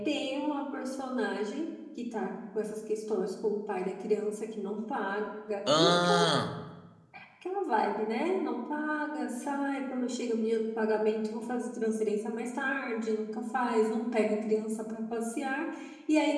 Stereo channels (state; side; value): identical; both; correlation 1.00